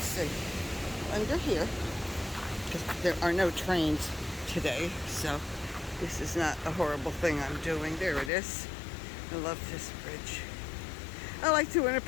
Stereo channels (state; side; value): drops out; right; at 8.3 s